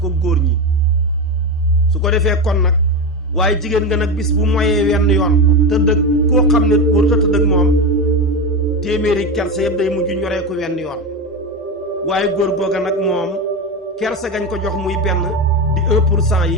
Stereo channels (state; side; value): normal; both; correlation 0.17